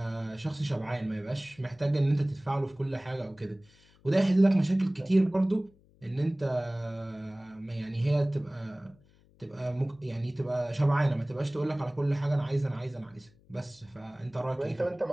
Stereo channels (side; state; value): left; noise; hum, 29 dB below the sound